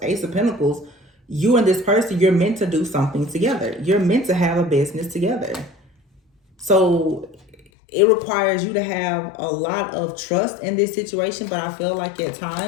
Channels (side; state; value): right; drops out; at 7.6 s